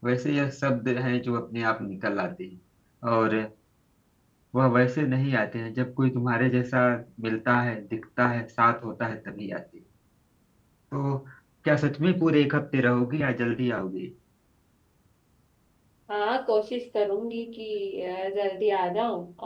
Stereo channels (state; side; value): identical; both; correlation 1.00